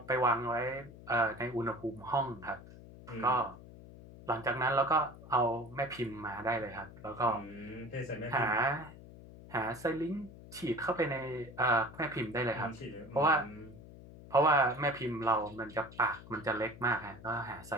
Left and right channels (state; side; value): noise; left; hum, 17 dB below the sound